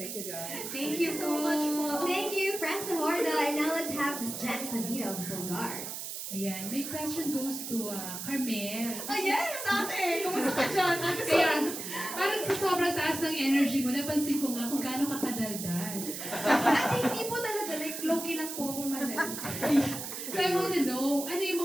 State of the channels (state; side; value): noise; right; hiss, 7 dB below the sound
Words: you, guys. Thank you so much po. Thank you, Franza Horda. And now let's have Miss Janice Navita of Bulgar. Ayan, my question goes to Carmel. Oh yes, ate! Kumusta ka dyan? Kaya, parang sa sobrang taas ng energy mo, napansin ko nga kung gaano ka kadaldal. Ate, hindi po talaga. Like, low-key lang po akong madal. So I wanna know, ano yung